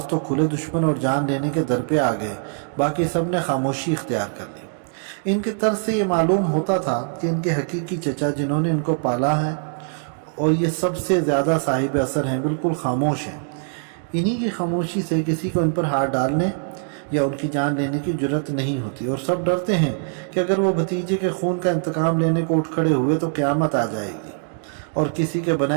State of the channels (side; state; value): left; silent; digital silence